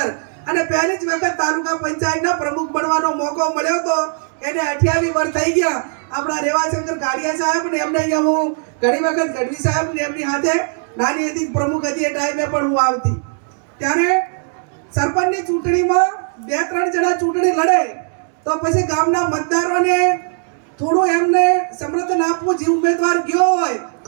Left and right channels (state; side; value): silent; left; 56 dB below the other